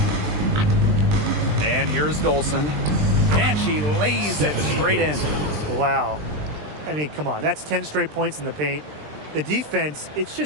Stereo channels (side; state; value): left; late; 20 ms